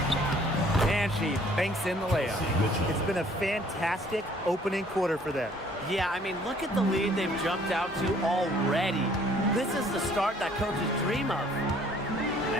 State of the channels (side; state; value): both; normal; correlation 0.58